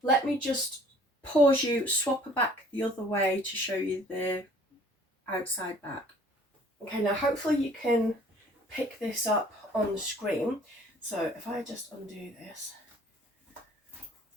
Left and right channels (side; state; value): both; normal; correlation 0.54